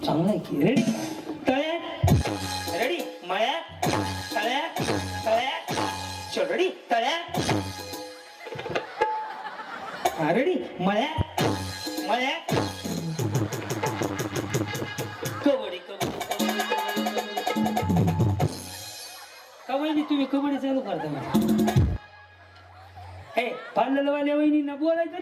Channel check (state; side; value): identical; both; correlation 1.00